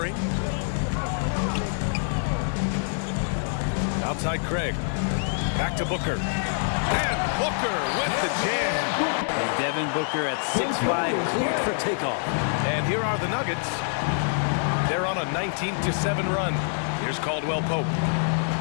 Outside Craig. Back to Booker. And Booker with the jam. And Devin Booker at 6'5", cleared for takeoff. And here are the Nuggets. They're on a 19-7 run. Here's Caldwell Pope.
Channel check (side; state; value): right; silent; 61 dB below the other